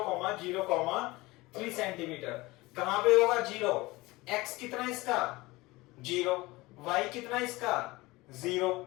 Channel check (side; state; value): right; quieter; 21.1 dB